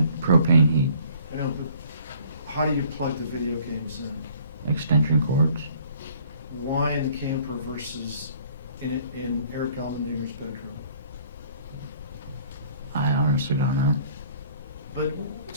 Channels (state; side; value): inverted; both; correlation -0.56